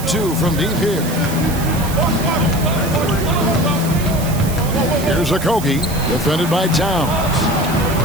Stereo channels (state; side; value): noise; right; hiss, 11 dB below the sound